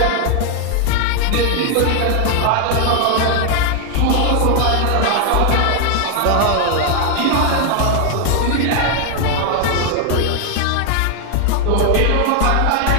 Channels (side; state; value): both; different; correlation 0.00